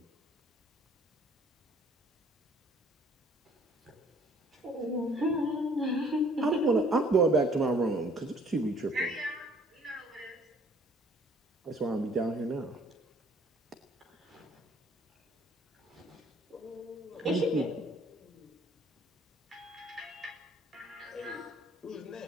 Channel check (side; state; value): both; normal; correlation 0.58